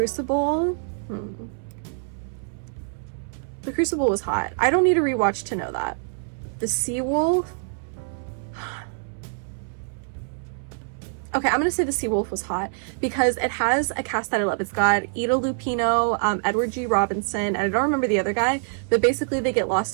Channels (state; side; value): silent; left; 62 dB below the other